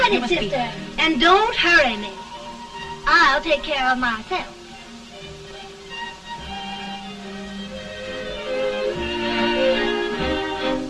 sister. And don't hurry me. I'll take care of myself.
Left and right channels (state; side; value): identical; both; correlation 1.00